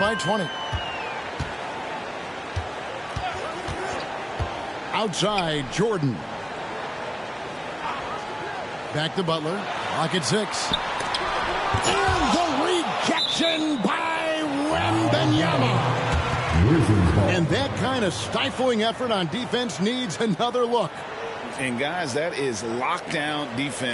20. Outside, Jordan. Back to Butler. Lock at 6. And the rejection by Wembanyama. And that kind of stifling effort on defense needs another look. And guys, that is lockdown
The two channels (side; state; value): both; identical; correlation 1.00